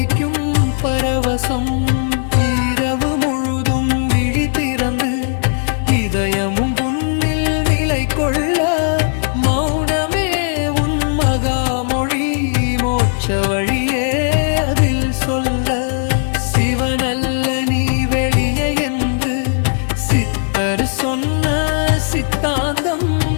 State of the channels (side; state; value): right; silent; digital silence